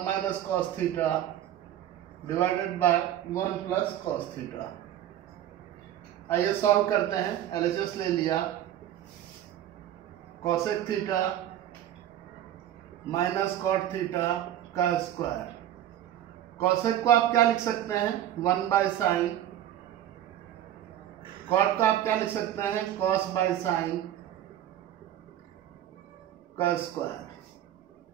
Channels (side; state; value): left; quieter; 11.8 dB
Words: minus cos theta divided by 1 plus cos theta. आइए सॉल्व करते हैं। एलएचएस ले लिया। Cosec theta minus cot theta का स्क्वायर। कोसेक को आप क्या लिख सकते हैं? 1 बाय साइन। कॉट को आप क्या लिख सकते हैं? कॉस बाय साइन का स्क्वायर।